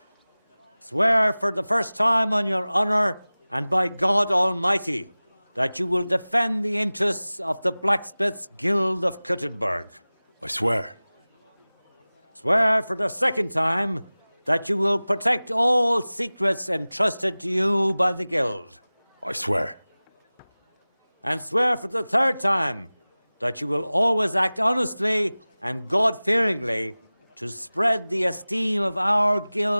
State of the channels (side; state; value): both; inverted; correlation -0.99